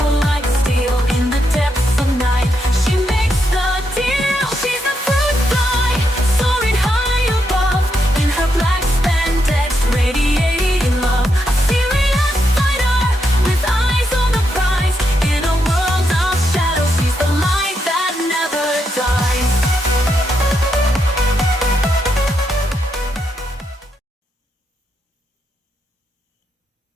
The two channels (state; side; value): normal; both; correlation 0.81